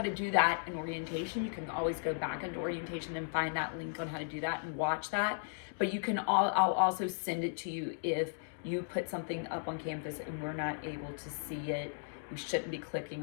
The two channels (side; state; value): right; silent; digital silence